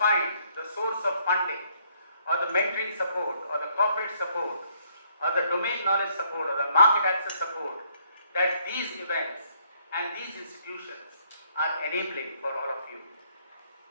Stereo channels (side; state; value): both; inverted; correlation -0.67